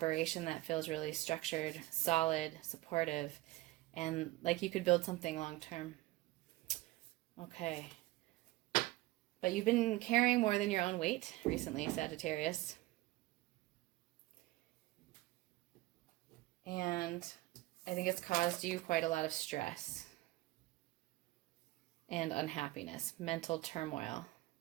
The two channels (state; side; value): quieter; left; 18.6 dB